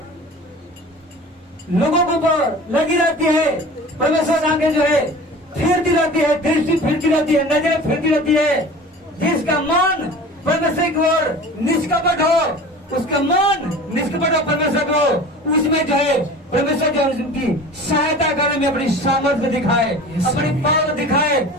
लोगों के ऊपर लगी रहती है। परमेश्वर की आंखें जो है फिरती रहती है, दृष्टि फिरती रहती है, नजर फिरती रहती है। जिसका मन परमेश्वर की ओर निष्कपट हो, उसका मन निष्कपट हो परमेश्वर को, उसमें जो है परमेश्वर जो उनकी सहायता करने में अपनी सामर्थ्य दिखाए, अपनी पावर दिखाए।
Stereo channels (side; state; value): both; normal; correlation 0.39